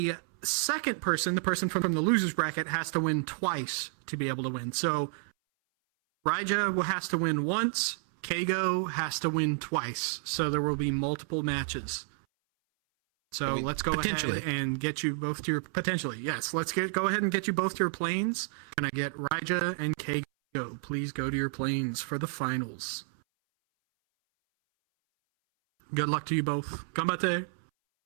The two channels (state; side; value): silent; left; 58 dB below the other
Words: second person, the person from the loser's bracket, has to win twice to be able to win. So Raija has to win once. Kago has to win twice. So there will be multiple matches. So let's go potentially. ahead and get you both to your potentially. Yes, let's go ahead and get you both to your planes. And I get Raija and Kago. Please go to your planes for the finals. Good luck to you both. Gambate.